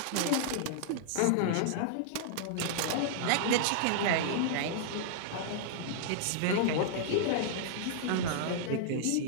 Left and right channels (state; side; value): different; both; correlation -0.01